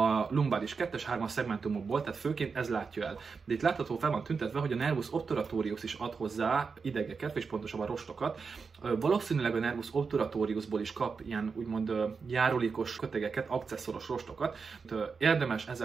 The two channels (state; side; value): quieter; left; 5.2 dB